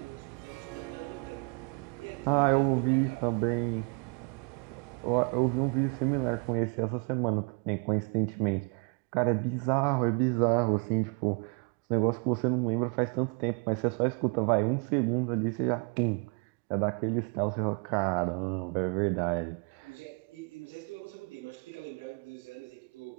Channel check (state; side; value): quieter; left; 35.7 dB